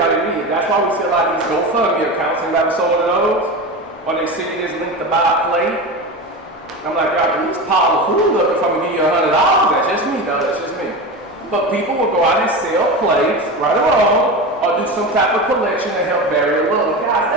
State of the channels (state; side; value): normal; both; correlation 0.25